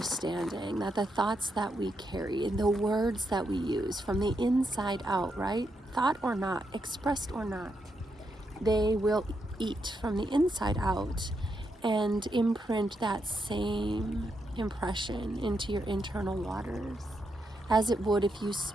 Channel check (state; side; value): normal; both; correlation 0.82